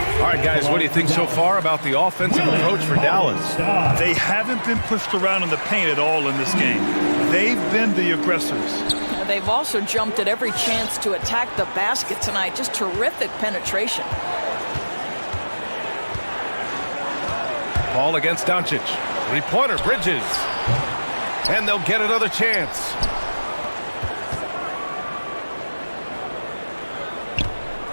All right, guys, what do you think so far about the offensive approach for Dallas? They haven't been pushed around in the paint at all in this game. They've been the aggressors. They've also jumped at every chance to attack the basket tonight. Just terrific penetration. Paul against Doncic. 3-pointer, Bridges. And they'll get another chance.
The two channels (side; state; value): both; inverted; correlation -1.00